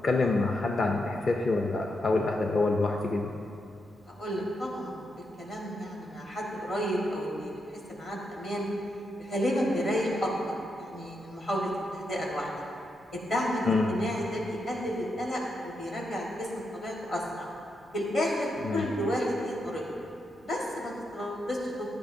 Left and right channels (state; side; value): normal; both; correlation 0.83